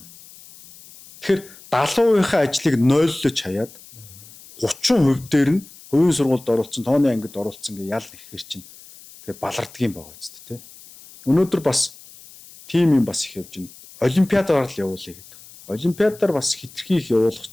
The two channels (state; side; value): noise; left; hiss, 21 dB below the sound